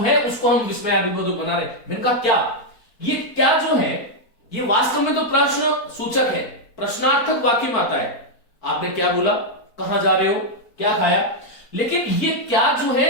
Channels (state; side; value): late; right; 4.3 ms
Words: उसको हम विस्मयादिबोधक बना रहे। मैंने कहा क्या, ये क्या जो है ये वास्तव में तो प्रश्न सूचक है, प्रश्नार्थक वाक्य में आता है। आपने क्या बोला, कहां जा रहे हो, क्या खाया, लेकिन ये क्या जो